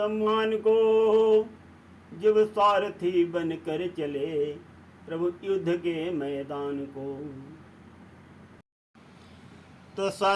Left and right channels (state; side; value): identical; both; correlation 1.00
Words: को, जब सारथी बन कर चले प्रभु युद्ध के मैदान को। तो